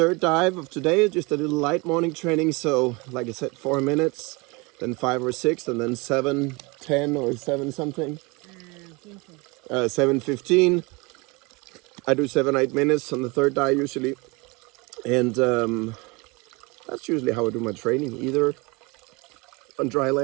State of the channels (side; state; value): left; quieter; 26.7 dB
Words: dive of today, just a little light morning training. So like I said, 4 minutes, then 5 or 6, and then 7, 10 or 7 something. 7:15. I do 7-8 minutes on the third dive usually. And that's usually how I do my training, either on dry